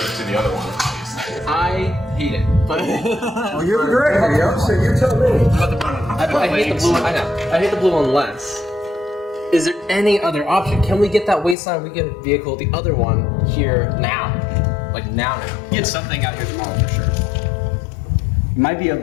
to the other one. I hate it. But well, you're the director, so you tell me. I hate the blue one. I know. I hate the blue one less. Is there any other option? Can we get that Wasteland Weekend vehicle, the other one, here now? Like now? Get something out here tomorrow for sure. Might be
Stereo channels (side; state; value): right; drops out; at 11.6 s